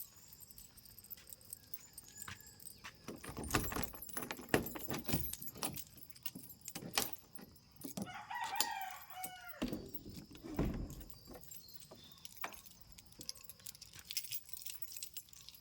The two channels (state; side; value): identical; both; correlation 1.00